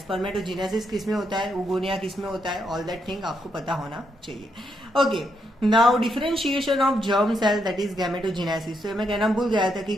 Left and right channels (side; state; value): both; normal; correlation 0.79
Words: किस में होता है, oogonia किस में होता है, ऑल दैट थिंग आपको पता होना चाहिए। Okay, now differentiation of germ cell that is gametogenesis. तो मैं कहना भूल गया था कि